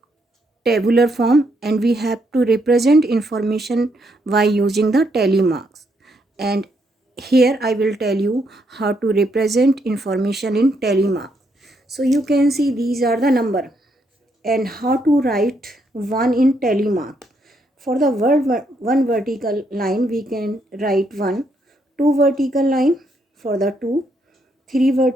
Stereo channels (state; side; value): normal; both; correlation 0.75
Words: tabular form and we have to represent information by using the tally marks. And here I will tell you how to represent information in tally mark. So you can see these are the number and how to write one in tally mark. For the word one vertical line we can write 1, 2 vertical line for the 2, 3